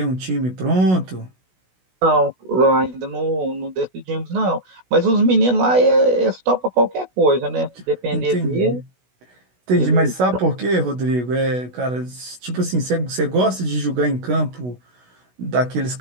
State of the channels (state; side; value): late; left; 16 ms